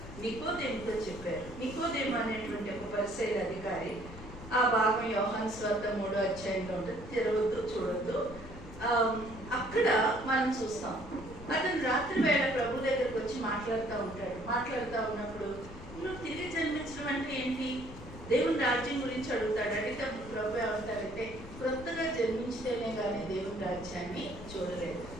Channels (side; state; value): left; noise; rumble, 14 dB below the sound